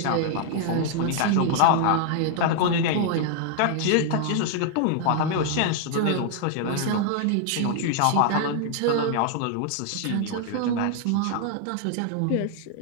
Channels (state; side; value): different; both; correlation 0.00